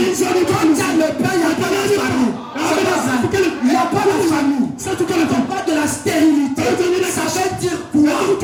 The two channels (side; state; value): both; identical; correlation 1.00